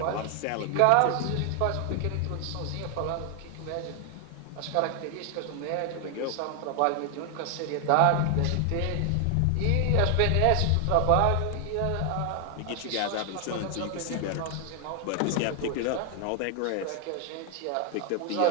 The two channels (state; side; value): different; both; correlation 0.00